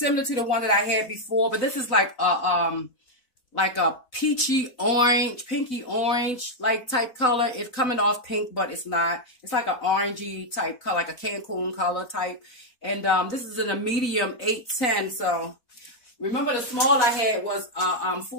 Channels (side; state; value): right; late; 4.0 ms